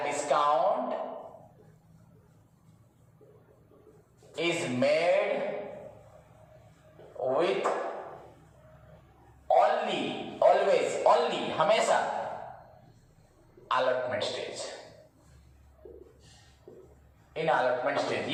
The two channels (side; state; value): both; identical; correlation 1.00